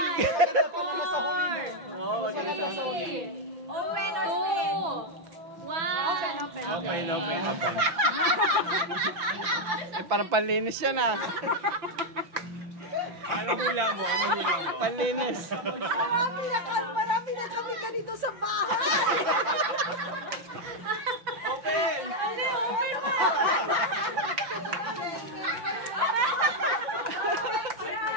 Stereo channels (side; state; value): left; late; 5.9 ms